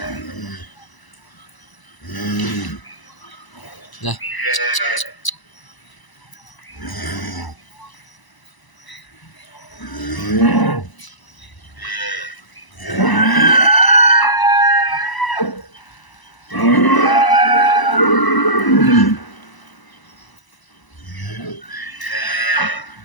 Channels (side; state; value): right; late; 1.0 ms